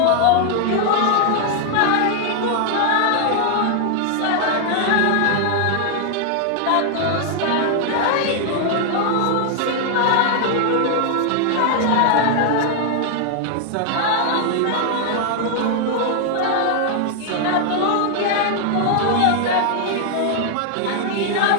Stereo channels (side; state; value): both; different; correlation 0.00